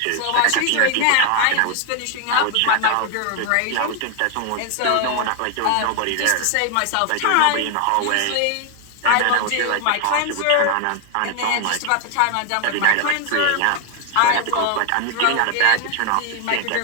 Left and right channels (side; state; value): both; different; correlation 0.00